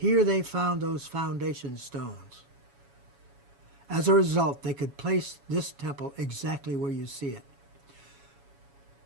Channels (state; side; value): late; left; 7.2 ms